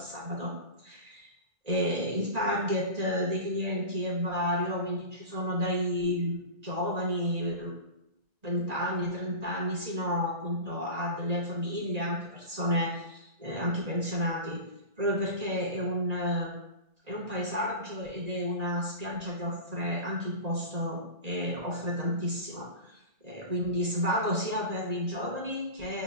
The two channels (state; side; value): late; left; 1.9 ms